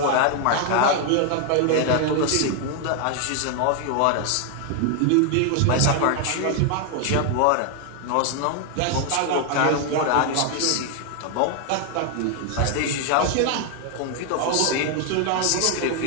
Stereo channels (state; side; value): different; both; correlation 0.00